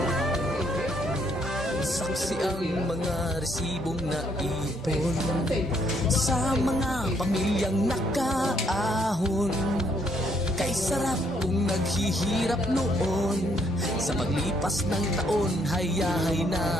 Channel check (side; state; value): both; normal; correlation 0.70